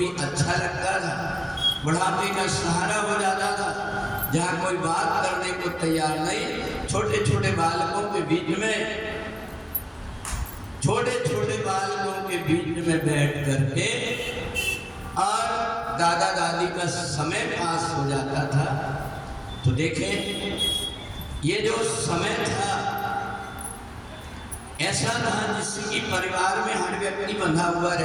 अच्छा लगता था, बुढ़ापे का सहारा हो जाता था। जहाँ कोई बात करने को तैयार नहीं, छोटे छोटे बालकों के बीच में बैठ करके और दादा दादी का समय पास हो जाता था। तो देखें, ये जो समय था ऐसा था जिसकी परिवार में हर व्यक्ति बंधा हुआ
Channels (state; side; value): identical; both; correlation 1.00